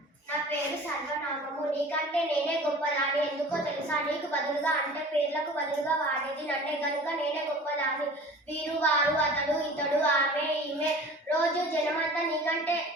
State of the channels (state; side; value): normal; both; correlation 0.42